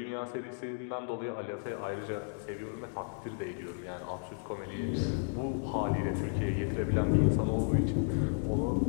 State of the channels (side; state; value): right; silent; digital silence